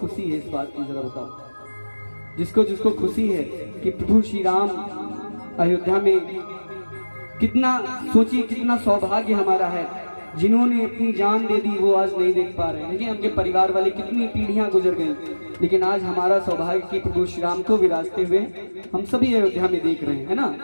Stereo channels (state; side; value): inverted; both; correlation -1.00